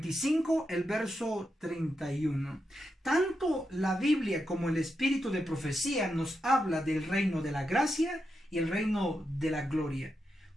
el verso 31. Tanto la Biblia como el espíritu de profecía nos habla del reino de la gracia y el reino de la gloria.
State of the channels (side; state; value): both; normal; correlation 0.86